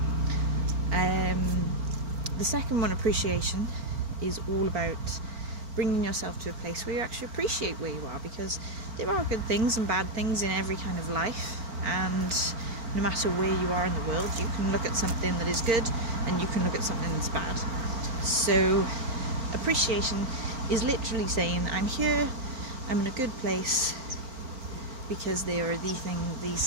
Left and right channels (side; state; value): left; late; 4.4 ms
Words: The second one, appreciation, is all about bringing yourself to a place where you actually appreciate where you are, because there are good things and bad things in every kind of life, and no matter where you are in the world, you can look at something that is good and you can look at something that's bad. So appreciation is literally saying, I'm here, I'm in a good place, because there are